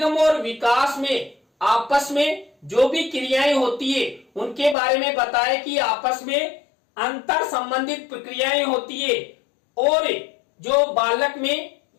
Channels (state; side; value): drops out; right; at 4.8 s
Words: और विकास में आपस में जो भी क्रियाएं होती है उनके बारे में बताया कि आपस में अंतर संबंधित प्रक्रियाएं होती है और जो बालक में